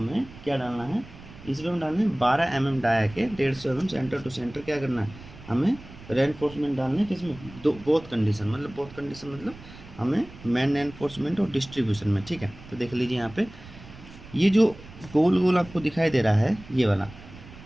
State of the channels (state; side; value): noise; right; rumble, 18 dB below the sound